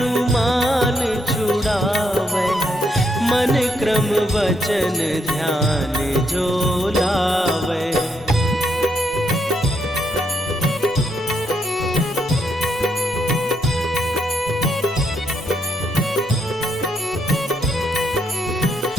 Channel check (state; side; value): normal; both; correlation 0.77